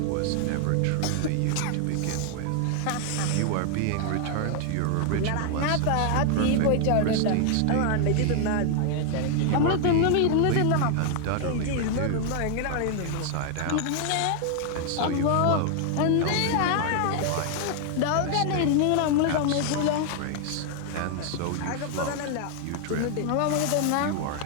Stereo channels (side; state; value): both; different; correlation 0.00